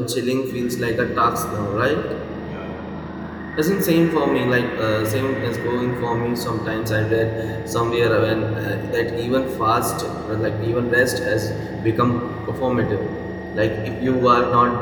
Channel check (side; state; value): both; identical; correlation 1.00